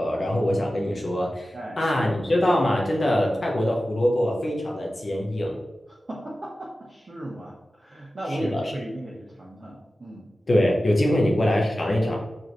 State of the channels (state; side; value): normal; both; correlation 0.94